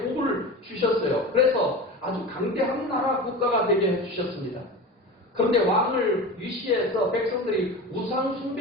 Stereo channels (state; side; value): normal; both; correlation 0.30